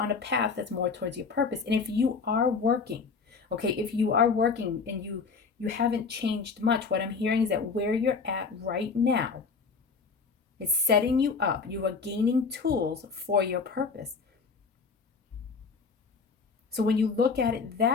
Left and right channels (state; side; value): quieter; right; 5.0 dB